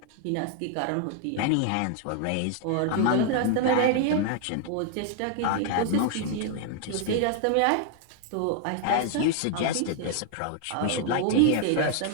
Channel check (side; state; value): both; different; correlation 0.00